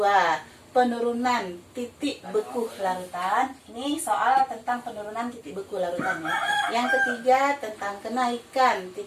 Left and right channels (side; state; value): both; identical; correlation 1.00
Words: penurunan titik beku larutan. Ini soal tentang penurunan titik beku larutan ya. Yang ketiga tentang kenaikan